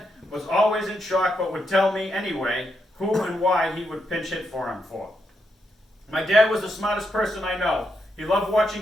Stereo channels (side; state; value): both; normal; correlation 0.81